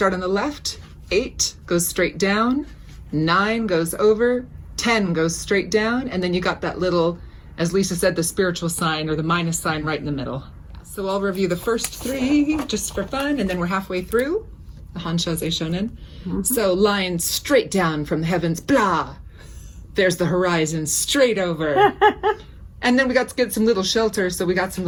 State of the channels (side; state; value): both; identical; correlation 1.00